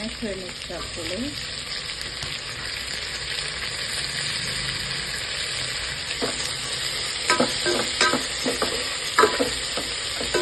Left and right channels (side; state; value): both; identical; correlation 1.00